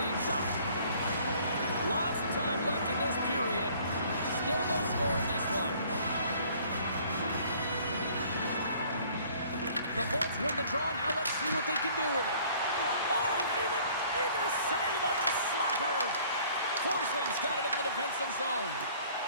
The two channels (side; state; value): both; inverted; correlation -0.56